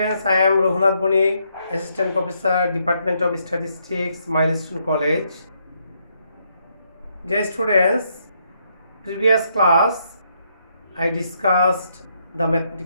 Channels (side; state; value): both; inverted; correlation -0.75